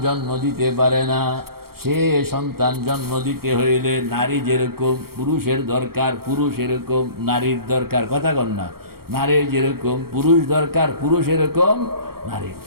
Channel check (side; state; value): left; late; 0.94 ms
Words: জন্ম দিতে পারে না। সে সন্তান জন্ম দিতে হইলে নারী যেরকম পুরুষের দরকার, পুরুষ এরকম নারীর দরকার, কথা কন না। নারীর যেরকম পুরুষ দরকার, পুরুষ এরকম নারীর